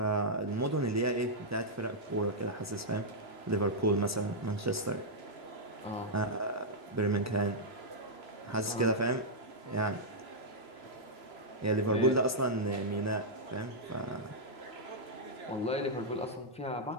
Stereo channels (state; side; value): normal; both; correlation -0.07